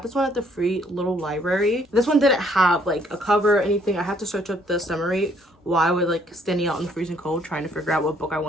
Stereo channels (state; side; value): normal; both; correlation 0.65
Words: this one at the free little library. This one didn't have like a cover or anything. I had to search up the summary while I was like standing out in the freezing cold trying to figure out what book I